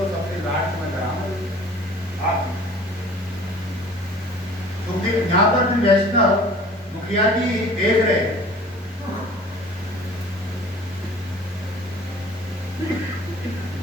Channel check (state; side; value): normal; both; correlation 0.48